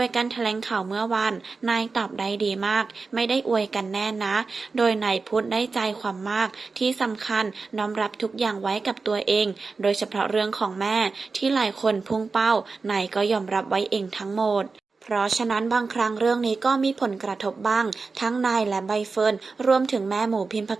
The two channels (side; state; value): left; quieter; 4.3 dB